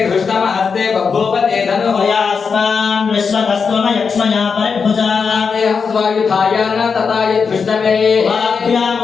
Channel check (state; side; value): quieter; right; 5.6 dB